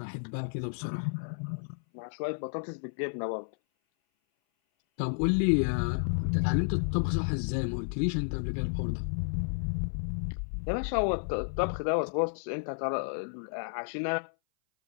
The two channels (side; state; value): right; silent; 57 dB below the other